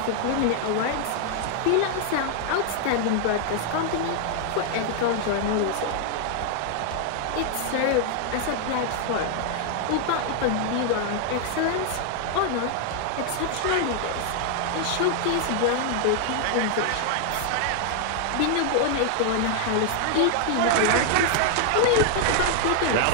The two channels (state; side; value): different; both; correlation 0.00